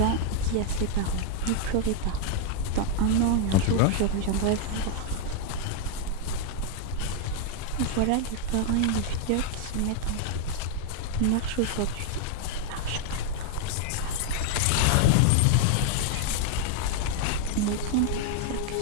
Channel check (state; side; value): different; both; correlation 0.00